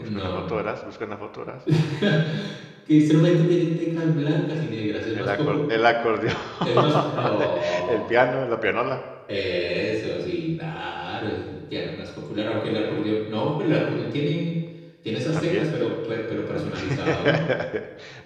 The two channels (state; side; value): identical; both; correlation 1.00